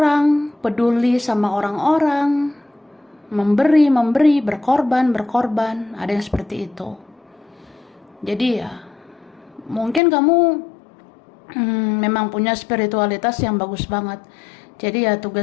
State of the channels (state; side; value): drops out; right; at 10.0 s